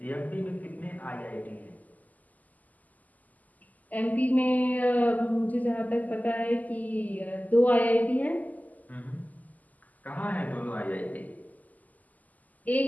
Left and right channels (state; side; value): late; right; 0.079 ms